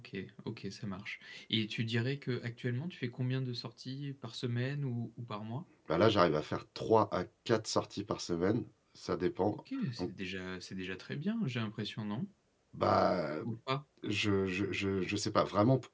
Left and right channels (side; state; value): both; identical; correlation 1.00